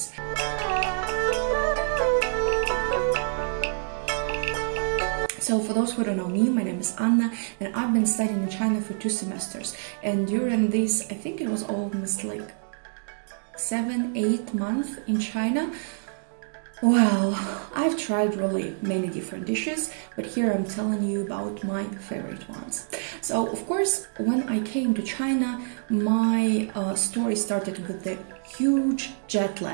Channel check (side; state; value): left; silent; digital silence